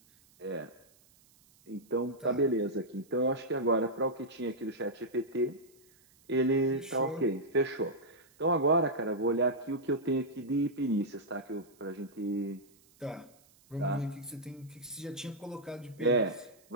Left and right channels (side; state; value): right; noise; hiss, 30 dB below the sound